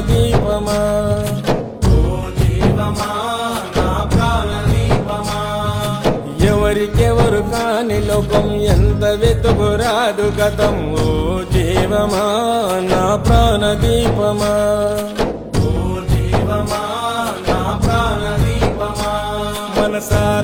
దీపమా ఓ జీవమా నా ప్రాణ దీపమా ఎవరికెవరు కాని లోకం ఎంత వెతుకురాదు గతం ఓ జీవమా నా ప్రాణ దీపమా ఓ జీవమా నా ప్రాణ దీపమా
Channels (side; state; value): both; identical; correlation 1.00